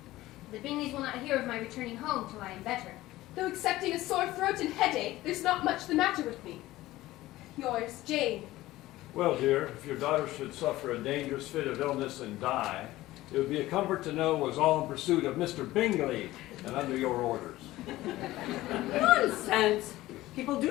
The Bingleys will not hear of my returning home till I am better. Though excepting a sore throat and headache, there's not much the matter with me. Yours, Jane. Well, dear, if your daughter should suffer a dangerous fit of illness and die, it would be a comfort to know it was all in pursuit of Mr. Bingley and under your orders. Nonsense! People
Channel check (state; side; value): quieter; right; 16.8 dB